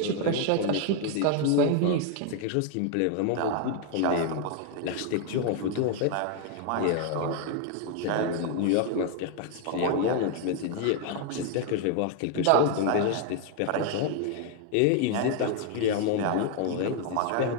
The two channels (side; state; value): both; different; correlation 0.01